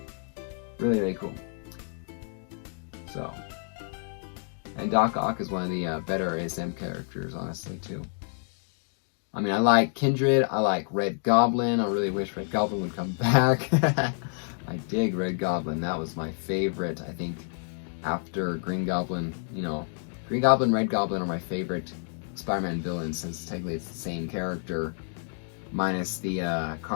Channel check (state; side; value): silent; right; 56 dB below the other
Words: really, really cool. So, and Doc Ock is one of the better ASM characters, honestly, too. I mean, I like Kindred, I like Red Goblin. I really wish Red Goblin would come back. I dig Red Goblin. That was my favorite, I think, after Green Goblin. You know, Green Goblin, Red Goblin are my favorite Spider-Man villains, since technically it's the same character, minus the